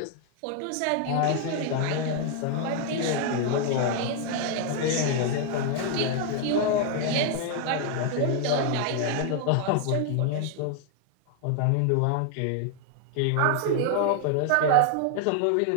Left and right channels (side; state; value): both; different; correlation 0.00